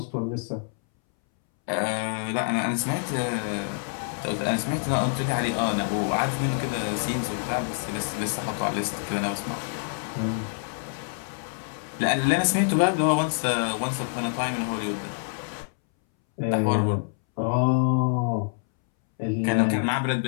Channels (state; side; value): silent; right; 61 dB below the other